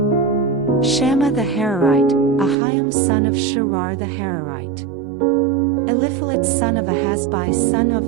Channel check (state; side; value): drops out; left; at 2.6 s